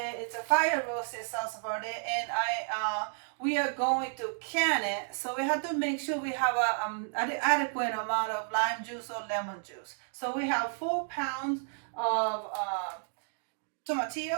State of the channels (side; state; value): left; silent; digital silence